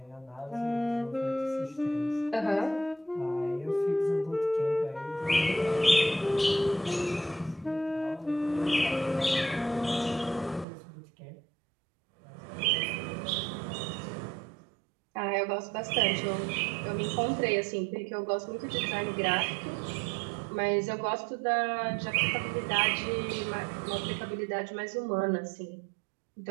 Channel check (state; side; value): drops out; left; at 10.7 s